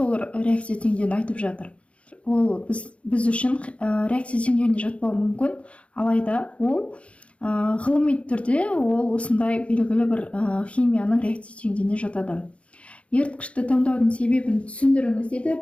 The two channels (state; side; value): late; right; 0.062 ms